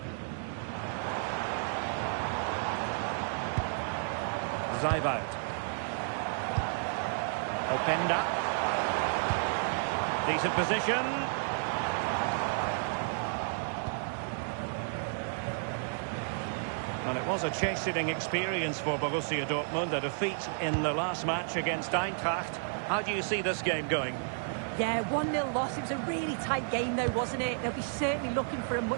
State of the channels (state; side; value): silent; left; digital silence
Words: Zijvoud. Openda. Decent position. And it was a chasing experience for Borussia Dortmund, a defeat in the last match against Eintracht. How do you see this game going? Yeah, 1-0 loss. It was a really tight game though, wasn't it? They'll be certainly looking for a